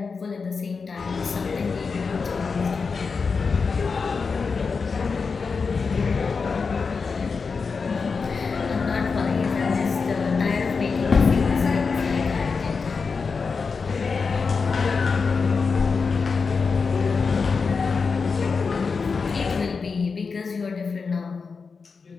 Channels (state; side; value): quieter; right; 5.0 dB